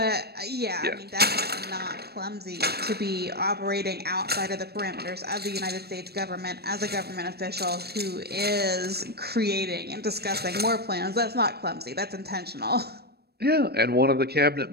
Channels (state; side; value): late; left; 0.47 ms